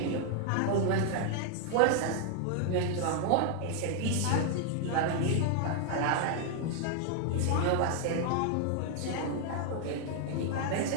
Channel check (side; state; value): both; different; correlation 0.00